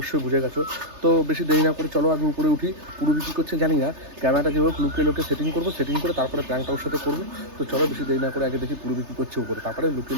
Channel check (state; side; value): late; left; 3.3 ms